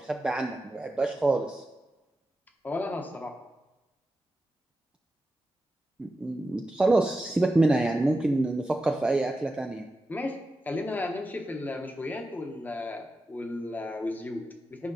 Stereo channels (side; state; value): both; normal; correlation 0.91